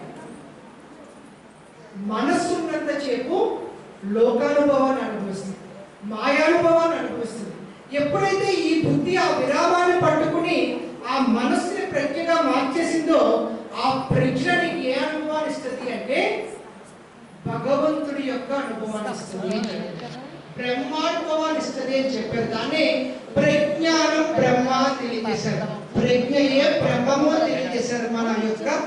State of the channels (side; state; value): both; identical; correlation 1.00